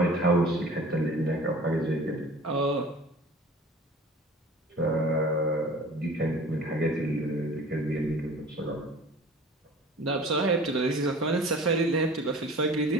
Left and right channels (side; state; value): both; normal; correlation 0.44